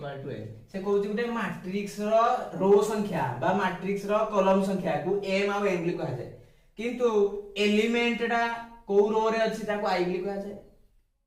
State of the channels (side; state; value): both; identical; correlation 1.00